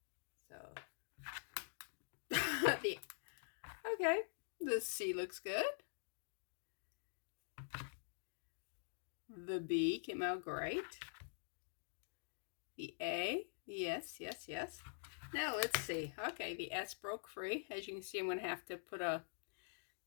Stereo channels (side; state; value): right; silent; digital silence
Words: So, okay, the C looks good. The B came out great. The A, yes. Now let's see. Okay, the S broke free. As you can see, I'm going to have to